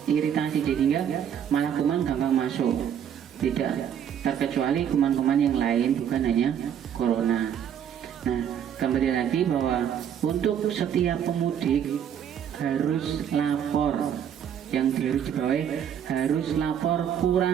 jadinya malah kuman gampang masuk. Tidak terkecuali kuman-kuman yang lain, bukan hanya corona. Nah kembali lagi bahwa untuk setiap pemudik harus lapor, yang harus dibawahi harus lapor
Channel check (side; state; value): left; quieter; 8.9 dB